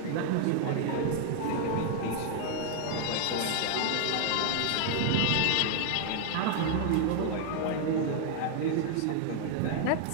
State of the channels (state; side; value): different; both; correlation 0.00